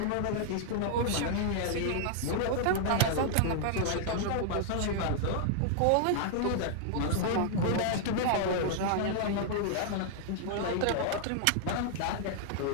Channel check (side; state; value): both; different; correlation -0.01